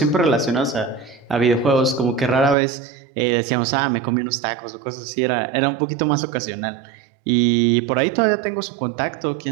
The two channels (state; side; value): drops out; left; at 2.6 s